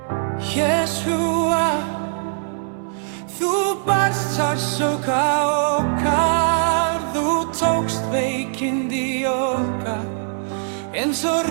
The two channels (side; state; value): left; silent; digital silence